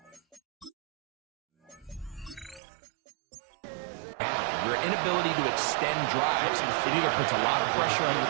Your inability to extend drives, it either puts a lot of pressure on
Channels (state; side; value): drops out; left; at 2.6 s